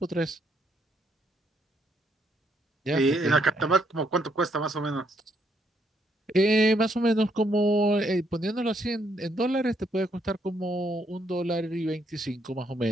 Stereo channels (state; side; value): normal; both; correlation 0.73